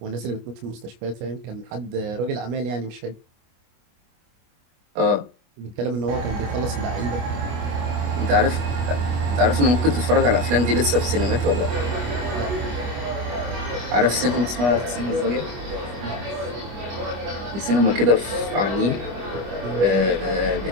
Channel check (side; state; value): left; late; 25 ms